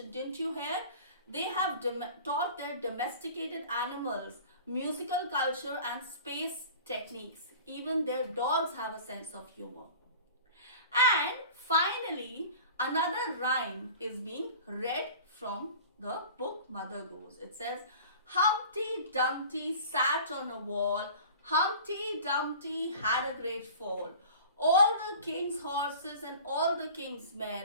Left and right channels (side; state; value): both; inverted; correlation -0.42